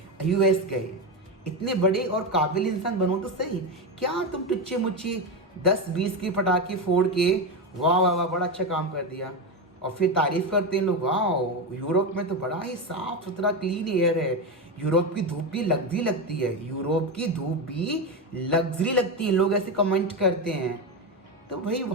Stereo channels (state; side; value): normal; both; correlation 0.14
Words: यूएस गए। इतने बड़े और काबिल इंसान बनो तो सही, क्या तुम टुच्चे मुच्चे 10-20 के पटाखे फोड़ के वाह वाह वाह बड़ा अच्छा काम कर दिया, और फिर तारीफ करते हैं लोग, वाह यूरोप में तो बड़ा ही साफ सुथरा क्लीन एयर है, यूरोप की धूप भी लग्जरी लगती है, यूरोप की धूप भी लग्जरी लगती है, लोग ऐसे कमेंट करते हैं। तो भाई